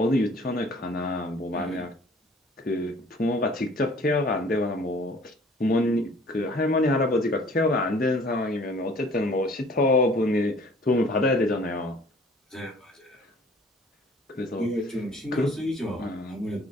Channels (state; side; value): normal; both; correlation 0.53